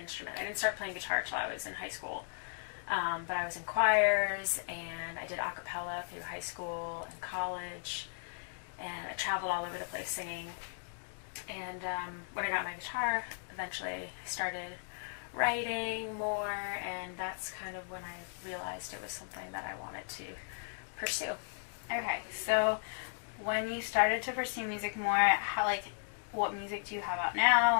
I didn't start playing guitar till I was in high school, but I was in choirs, and I did a cappella through high school and college, and I traveled all over the place singing. And when I got my guitar, eventually I started writing more, and that's kind of when I realized it was something that I wanted to pursue. Okay, so when you started to pursue music more, how, like, what music do you have out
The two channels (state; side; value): silent; right; digital silence